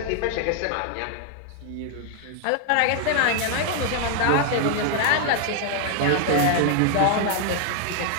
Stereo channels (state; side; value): different; both; correlation 0.00